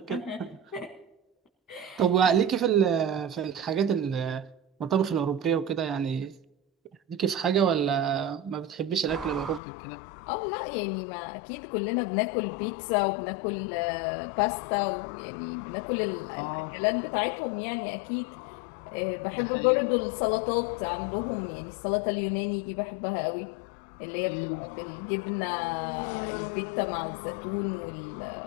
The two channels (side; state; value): right; drops out; at 9.6 s